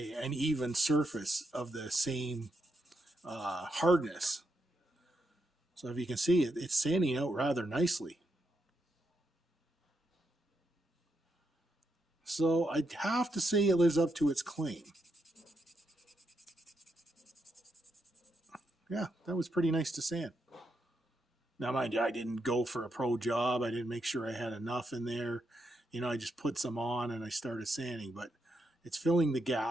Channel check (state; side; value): normal; both; correlation 0.82